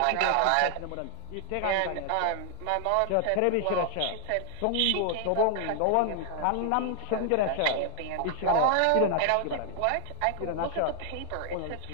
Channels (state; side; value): different; both; correlation 0.00